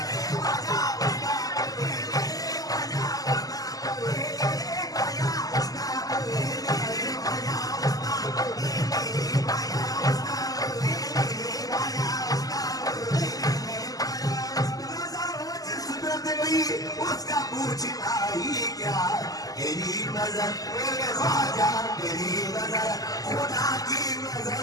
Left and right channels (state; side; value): late; right; 0.17 ms